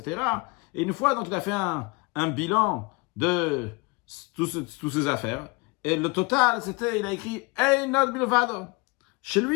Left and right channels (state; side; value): quieter; right; 27.1 dB